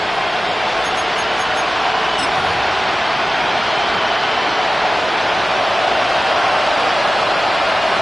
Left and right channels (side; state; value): both; normal; correlation 0.96